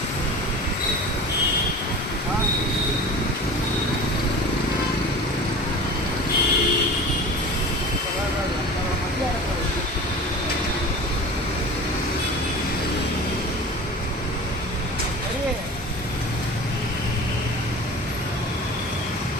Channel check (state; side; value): normal; both; correlation 0.36